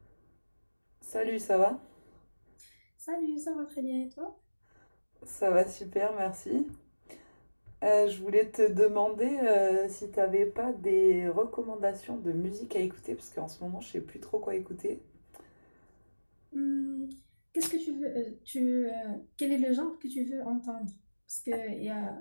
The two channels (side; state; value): both; inverted; correlation -1.00